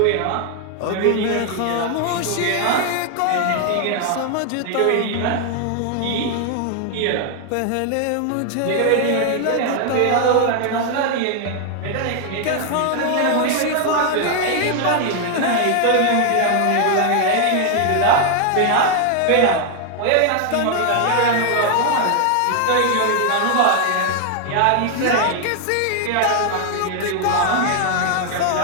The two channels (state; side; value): different; both; correlation 0.00